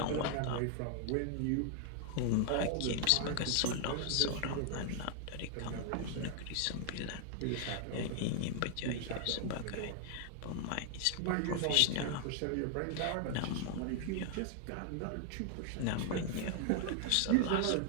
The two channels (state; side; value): different; both; correlation 0.00